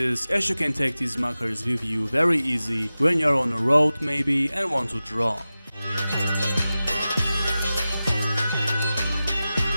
as you can take these markers with you very easy when you're on the road maybe and want to draw.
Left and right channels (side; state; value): both; inverted; correlation -0.95